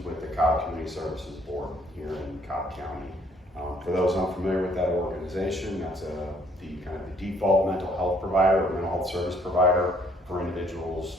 with the Cobb Community Services Board here in Cobb County. For those unfamiliar with that organization, that's the default mental health provider or mental health service provider for individuals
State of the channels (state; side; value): normal; both; correlation 0.64